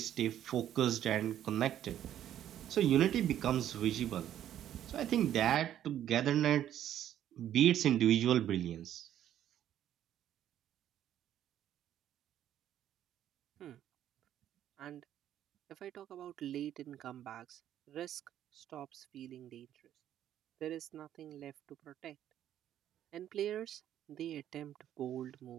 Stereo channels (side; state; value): left; quieter; 11.2 dB